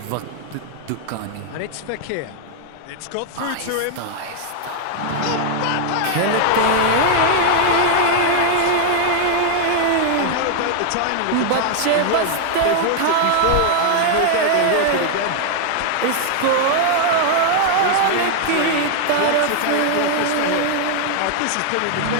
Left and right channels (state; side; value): different; both; correlation 0.00